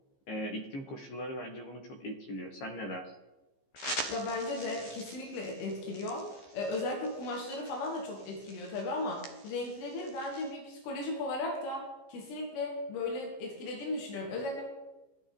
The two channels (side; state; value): right; late; 15 ms